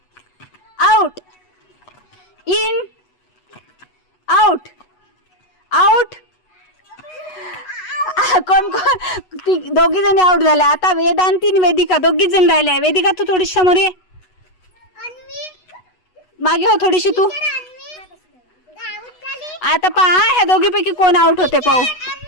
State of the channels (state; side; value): late; right; 8.1 ms